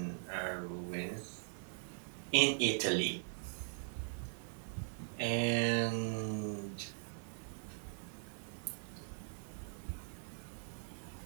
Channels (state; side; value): silent; left; digital silence